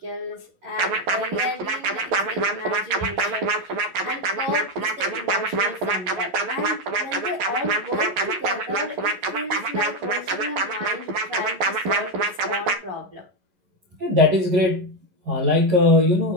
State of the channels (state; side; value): late; left; 11 ms